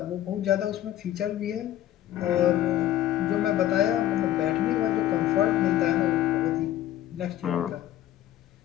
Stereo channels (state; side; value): quieter; right; 12.8 dB